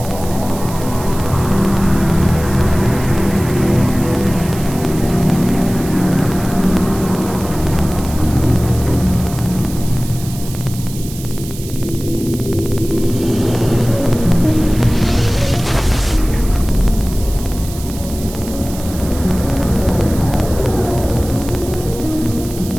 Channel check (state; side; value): noise; right; hiss, 14 dB below the sound